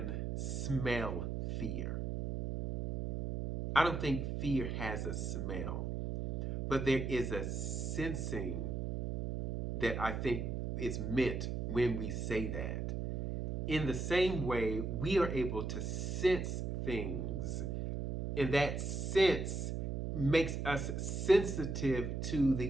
smell fear. I don't think fear has a smell, but there is a sensing that I think is meant when we say that. In the same way, we are able to sense things, and that sense makes us sensitive to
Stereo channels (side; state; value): right; noise; hum, 2 dB below the sound